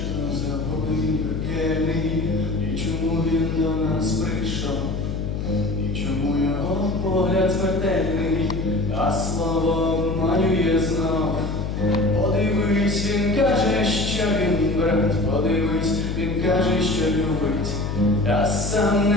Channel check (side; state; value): left; noise; hum, 3 dB below the sound